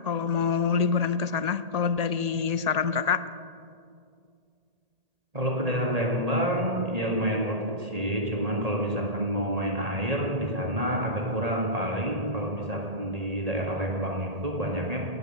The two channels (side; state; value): left; late; 1.8 ms